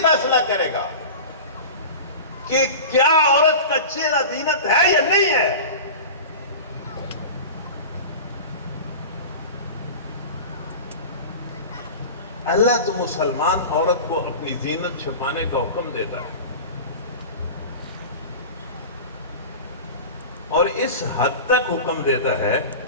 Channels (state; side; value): inverted; both; correlation -0.32